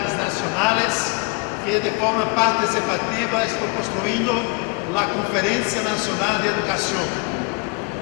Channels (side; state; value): right; quieter; 32.9 dB